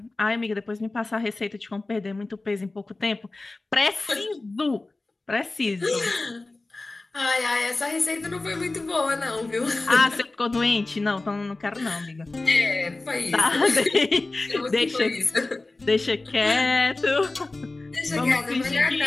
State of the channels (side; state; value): right; quieter; 3.2 dB